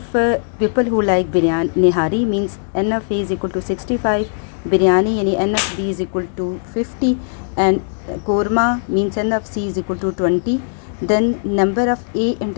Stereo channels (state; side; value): silent; right; digital silence